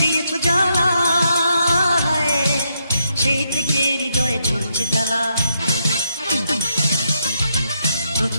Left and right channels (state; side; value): inverted; both; correlation -0.79